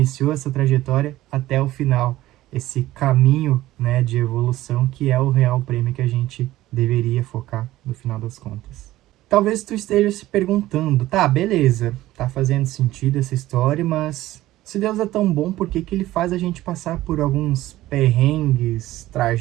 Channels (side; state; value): left; quieter; 15.8 dB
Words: essa trajetória até o final, esse caminho, né, de evolução que é o real prêmio que a gente deveria focar no final das contas. Talvez tu esteja se perguntando, tá, beleza, tá fazendo sentido essa história, mas se Deus é tão bom, por que que ele faz a gente passar por alguns perrengues,